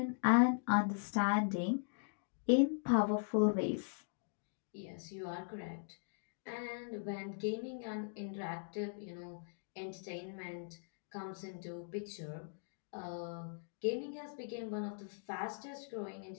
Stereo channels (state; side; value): silent; right; digital silence